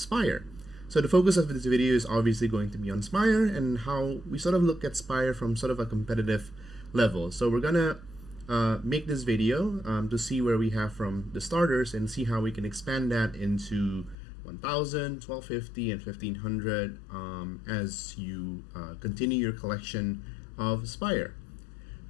So the focus of this video is obviously going to be on Spire and how we sort of look at Spire from sort of a competitive level. So we're gonna make this video to see where we have from the starters and see how we can expand that into 1000, 1250, and 1500 as you continue your collection of Spire.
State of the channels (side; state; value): right; drops out; at 14.2 s